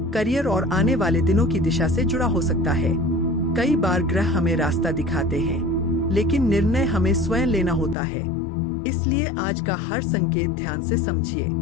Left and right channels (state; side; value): drops out; right; at 8.0 s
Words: करियर और आने वाले दिनों की दिशा से जुड़ा हो सकता है। कई बार ग्रह हमें रास्ता दिखाते हैं, लेकिन निर्णय हमें स्वयं लेना होता है। इसलिए आज का हर संकेत ध्यान से समझिए।